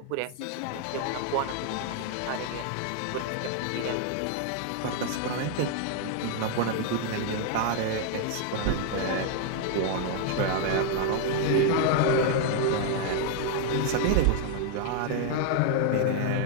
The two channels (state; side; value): different; both; correlation 0.00